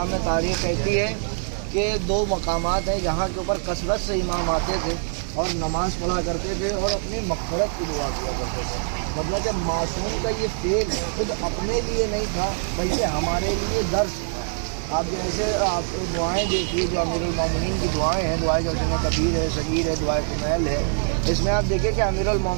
میں تاریخ کہتی ہے کہ دو مقامات ہیں جہاں کے اوپر کثرت سے امام آتے تھے اور نماز پڑھا کرتے تھے اور اپنی مغفرت کی دعا کیا کرتے تھے۔ مطلب کہ معصوم کا یہ فعل خود اپنے لیے نہیں تھا بلکہ ہمارے لیے درس تھا۔ آپ جیسے آپ دعائیں دیکھیے جو امیر المومنین کی دعائیں ہیں، دعائیں جیسے کبیر ہے، صغیر ہے، دعائیں کمیل ہے، اس میں آپ دیکھیں کہ امیر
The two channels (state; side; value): silent; left; 62 dB below the other